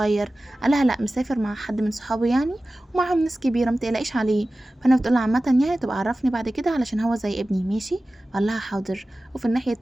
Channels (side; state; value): both; normal; correlation 0.96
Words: قالها لا، مسافر مع حد من صحابه يعني، ومعاهم ناس كبيره متقلقيش عليه. فانا بتقول عامه يعني تبقى عرفني بعد كده علشان هو زي ابني، ماشي؟ قال لها حاضر. وفي الناحيه